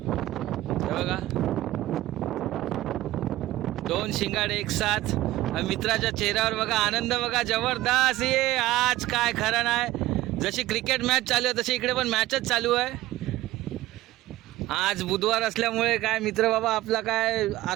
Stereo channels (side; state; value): left; quieter; 16.4 dB